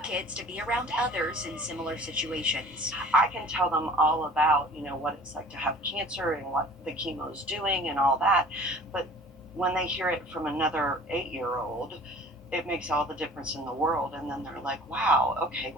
to be around others in similar situations. I can tell them all about, what it's like to have cancer and what the chemo's doing and all that, but when they hear it from another 8-year-old, it makes all the difference in the world, and then they're like, wow, okay,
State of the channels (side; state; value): both; normal; correlation 0.48